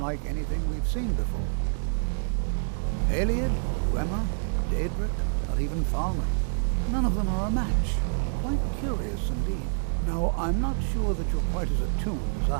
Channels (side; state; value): left; silent; digital silence